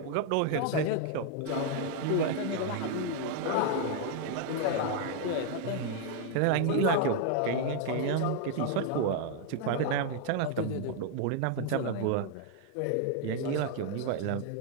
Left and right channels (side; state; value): both; different; correlation 0.00